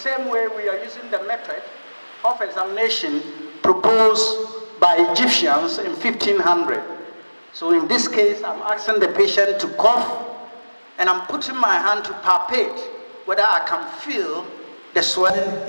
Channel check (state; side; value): inverted; both; correlation -1.00